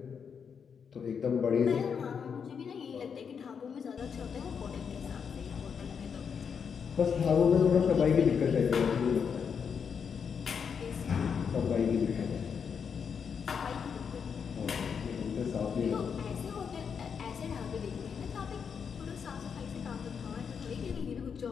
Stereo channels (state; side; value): quieter; right; 6.7 dB